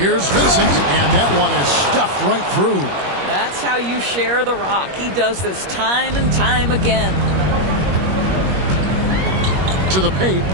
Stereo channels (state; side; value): late; left; 21 ms